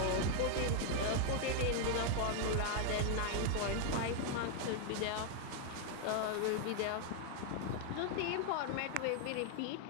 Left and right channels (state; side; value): different; both; correlation 0.00